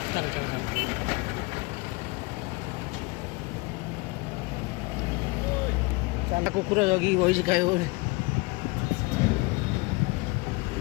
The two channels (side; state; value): right; quieter; 25.4 dB